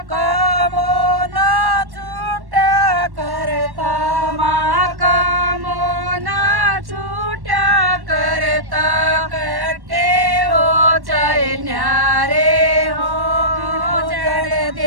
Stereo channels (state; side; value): late; left; 1.1 ms